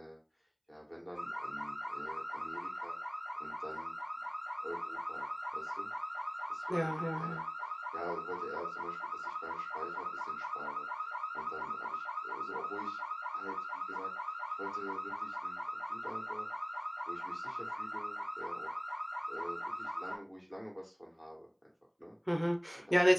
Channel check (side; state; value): both; identical; correlation 1.00